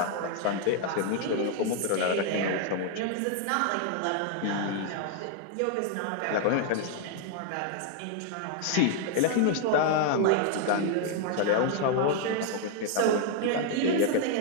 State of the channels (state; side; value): different; both; correlation 0.00